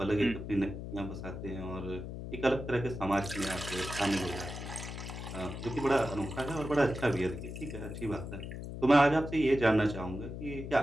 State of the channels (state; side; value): noise; left; hum, 8 dB below the sound